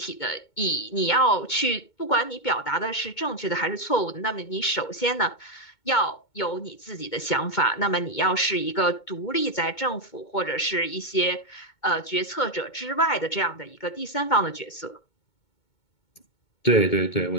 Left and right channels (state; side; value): late; right; 2.2 ms